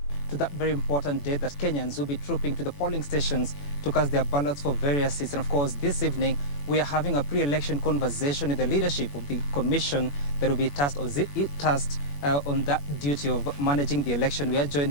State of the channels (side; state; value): right; late; 21 ms